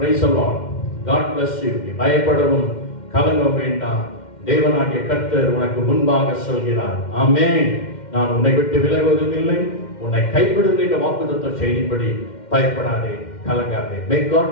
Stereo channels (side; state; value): right; late; 2.1 ms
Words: the Lord. God bless you. பயப்படவும் கலங்க வேண்டாம். தேவனாகிய கர்த்தர் உனக்கு முன்பாக சொல்கிறார். ஆமென். நான் உன்னை விட்டு விலகுவதும் இல்லை, உன்னை கைவிடுகின்ற வாக்குத்தத்த செய்தின்படி பயப்படாதே, கலங்காதே. May God